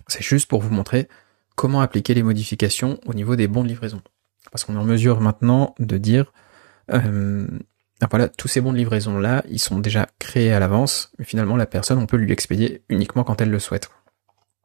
c'est juste pour vous montrer comment appliquer les modifications au niveau des bons de livraison. Parce qu'on est en mesure maintenant de dire, voilà, tous ces bons de livraison là, ils sont déjà créés à l'avance, mais finalement la personne, on peut lui expédier uniquement quand elle le souhaite.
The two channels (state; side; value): silent; left; 66 dB below the other